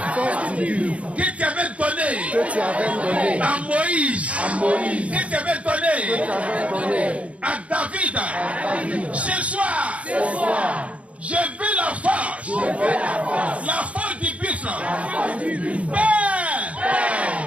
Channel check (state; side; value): late; left; 0.064 ms